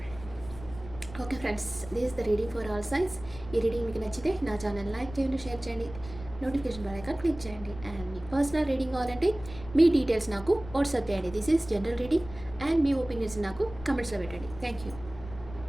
Okay friends, this is the reading for all signs. ఈ రీడింగ్ మీకు నచ్చితే నా ఛానల్ లైక్ చేయండి, షేర్ చేయండి, నోటిఫికేషన్ బెల్ ఐకాన్ క్లిక్ చేయండి. అండ్ మీ పర్సనల్ రీడింగ్ కావాలంటే మీ డీటెయిల్స్ నాకు వాట్సాప్ చేయండి. This is general reading and మీ ఒపీనియన్స్ నాకు కమెంట్స్లో పెట్టండి. Thank you.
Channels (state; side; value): noise; left; rumble, 15 dB below the sound